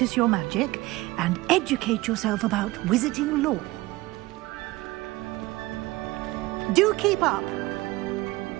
your magic and educate yourself about wizarding lore. Do keep up!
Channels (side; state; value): left; quieter; 19.9 dB